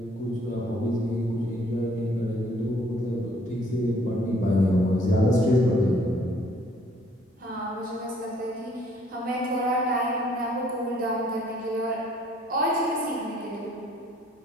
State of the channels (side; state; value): both; normal; correlation 0.62